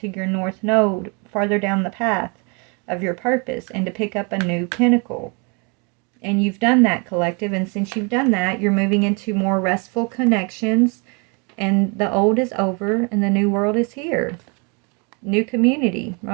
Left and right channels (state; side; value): quieter; left; 33.0 dB